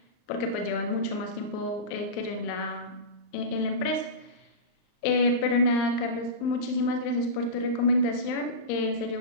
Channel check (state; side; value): late; right; 38 ms